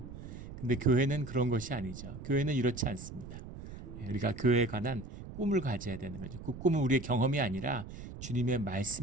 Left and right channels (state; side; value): noise; right; rumble, 12 dB below the sound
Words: 근데 교회는 그런 것이 아니죠. 교회는 이렇지 않습니다. 우리가 교회에 관한 꿈을 가져야 되는 거죠. 그 꿈은 우리의 경험이 아니라 주님의